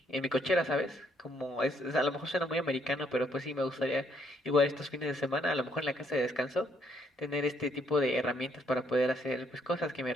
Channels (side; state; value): both; normal; correlation 0.70